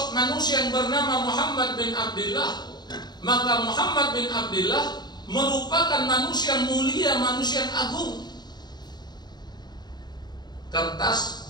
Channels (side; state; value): right; late; 0.20 ms